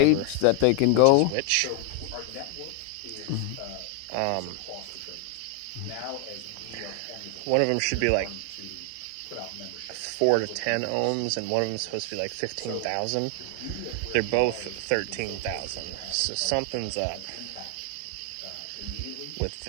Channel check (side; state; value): both; different; correlation 0.00